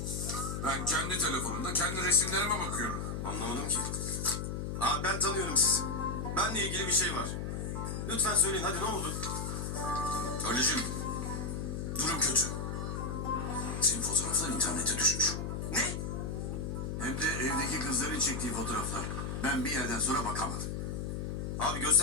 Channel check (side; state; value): left; noise; hum, 3 dB below the sound